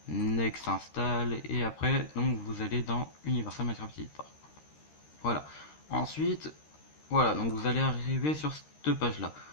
next install, et après donc vous allez dans Universal Minecraft Editor. Voilà. Ensuite, voilà, donc vous allez arriver sur cette page là.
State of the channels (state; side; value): late; right; 13 ms